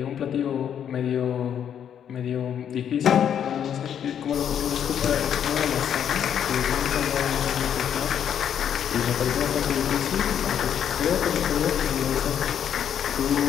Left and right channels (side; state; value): right; quieter; 9.0 dB